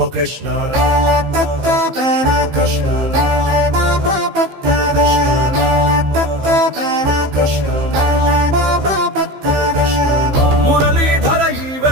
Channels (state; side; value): late; left; 15 ms